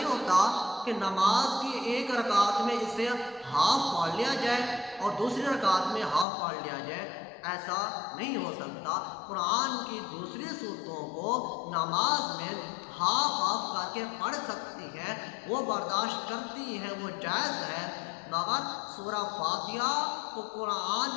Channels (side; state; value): right; drops out; at 6.2 s